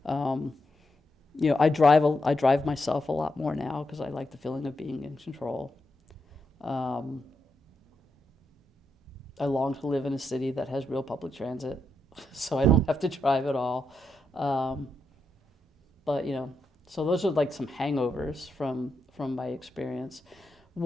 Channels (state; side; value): normal; both; correlation 0.83